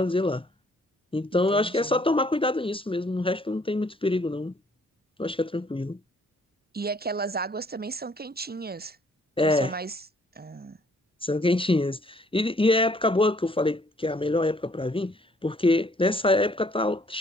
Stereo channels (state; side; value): normal; both; correlation 0.63